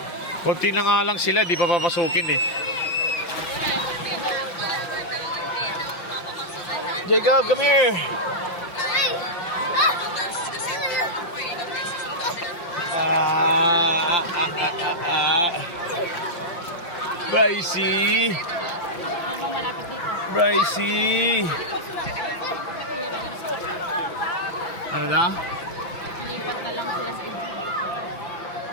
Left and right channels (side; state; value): right; late; 5.8 ms